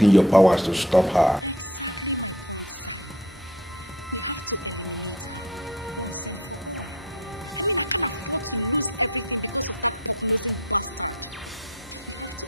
your powers to stop her. Exactly my point, Zion. We have to eliminate her once and for all. I mean, I can't afford to lose everything because of that pork-nosing bastard. We have to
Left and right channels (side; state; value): both; normal; correlation 0.45